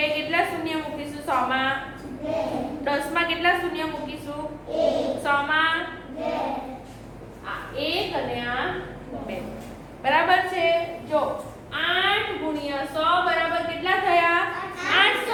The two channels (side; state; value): both; identical; correlation 1.00